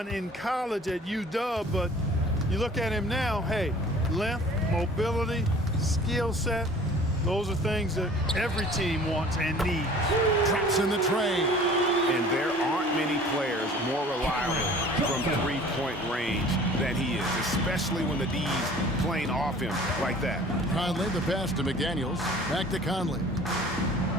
in college at UW, but you look at him now, hey, length, mobility, skill set, those are things that every team wants and needs. Traps in the tray. And there aren't many players more reliable from three-point range than he is, especially when the D's playing off him like that. Conley, the pass to McDaniels. Back to Conley.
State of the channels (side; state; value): both; normal; correlation 0.48